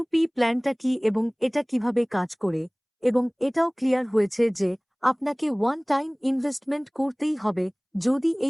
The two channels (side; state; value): both; identical; correlation 1.00